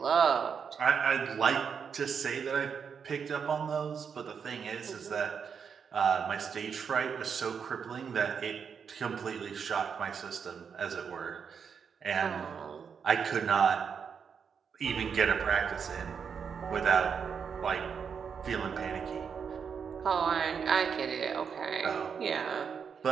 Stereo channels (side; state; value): left; quieter; 6.6 dB